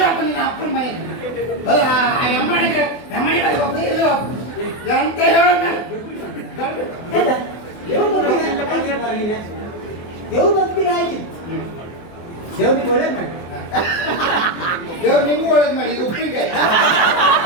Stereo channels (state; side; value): late; right; 24 ms